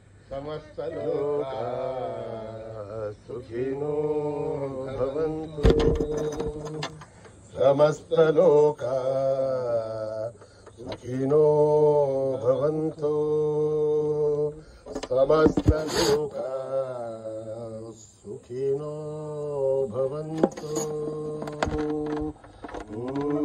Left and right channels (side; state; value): both; identical; correlation 1.00